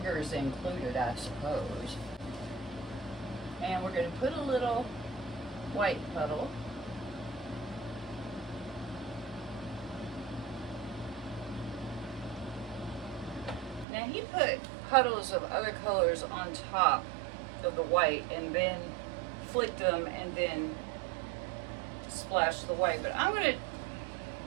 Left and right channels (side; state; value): left; drops out; at 13.9 s